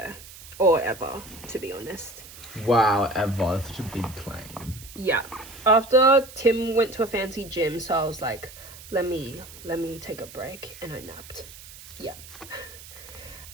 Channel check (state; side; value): noise; right; hiss, 17 dB below the sound